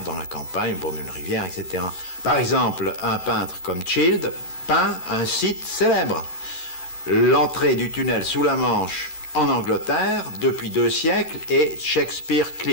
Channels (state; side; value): late; right; 13 ms